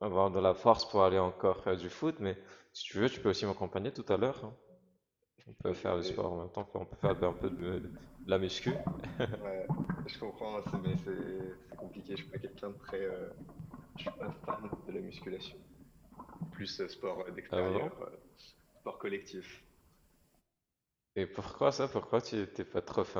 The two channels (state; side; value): identical; both; correlation 1.00